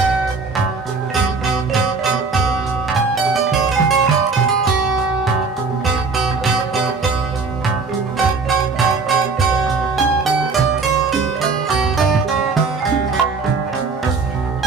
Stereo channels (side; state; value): left; quieter; 4.5 dB